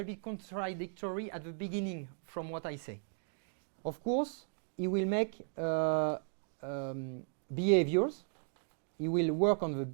bit contradictory at the beginning from what I say. Of course, he will make behaviors. He will work on the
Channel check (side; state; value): left; silent; digital silence